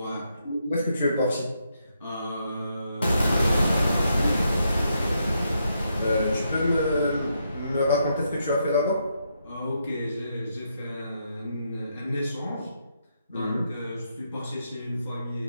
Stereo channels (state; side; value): inverted; both; correlation -0.79